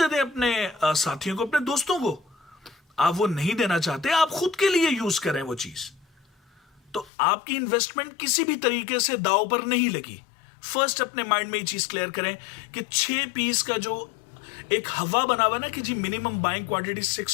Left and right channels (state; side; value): drops out; right; at 7.1 s